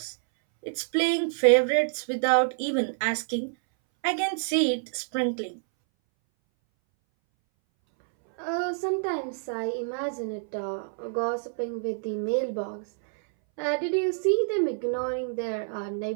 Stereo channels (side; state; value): left; silent; 60 dB below the other